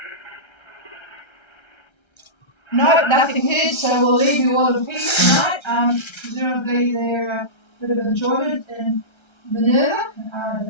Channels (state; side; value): late; right; 1.3 ms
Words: No, nothing heard, so we'll leave you all in peace tonight. Presumably they're a bit of enjoyment in Minerva.